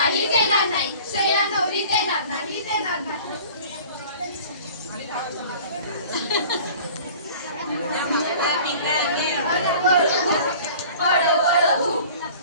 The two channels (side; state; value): both; inverted; correlation -0.45